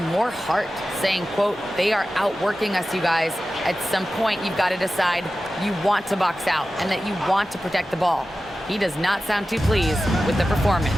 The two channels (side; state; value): both; normal; correlation 0.94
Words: more heart, saying, quote, they are outworking us, you guys. At some point, you've got to decide you want to box out and that you want to protect the ball. He does not sound too pleased with the performance.